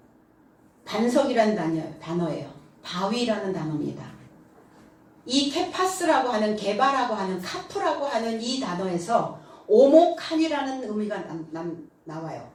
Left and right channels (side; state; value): both; identical; correlation 1.00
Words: 반석이라는 단어예요. 바위라는 단어입니다. 이 케파스라고 하는, 개바라고 하는, 카프라고 하는 이 단어에서 오목한이라는 의미가 나와요.